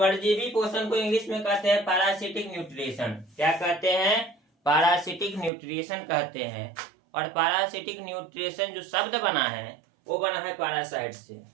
पोषण को इंग्लिश में कहते हैं पैरासिटिक न्यूट्रिशन। क्या कहते हैं? पैरासिटिक न्यूट्रिशन कहते हैं। और पैरासिटिक न्यूट्रिशन जो शब्द बना है वो बना है पैरासाइट से।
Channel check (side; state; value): left; drops out; at 5.5 s